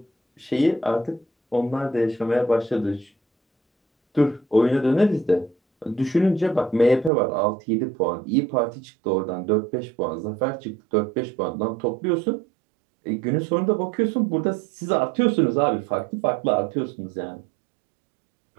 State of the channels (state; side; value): drops out; left; at 7.1 s